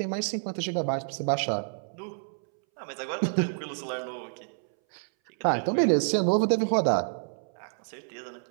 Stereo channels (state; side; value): silent; left; 59 dB below the other